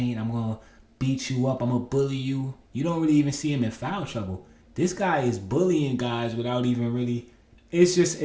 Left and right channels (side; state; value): both; identical; correlation 1.00